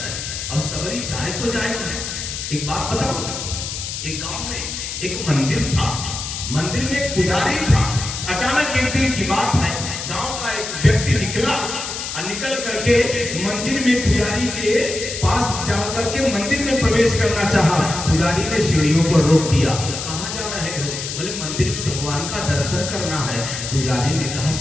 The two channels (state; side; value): noise; left; hiss, 6 dB below the sound